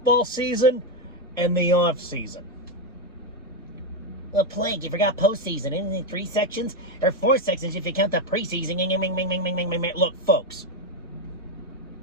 season and the off season. Well, Plague, you forgot postseason. Isn't it 3 sections? Or 4 sections if you count the preseason. Look, folks.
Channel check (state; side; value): normal; both; correlation 0.07